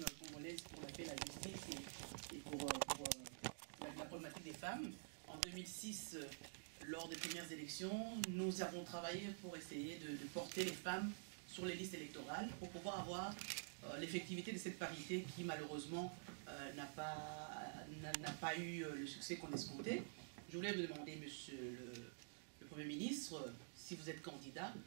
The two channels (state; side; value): silent; left; digital silence